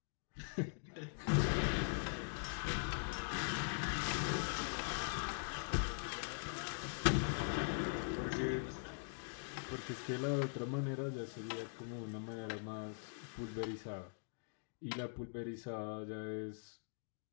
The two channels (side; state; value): right; silent; digital silence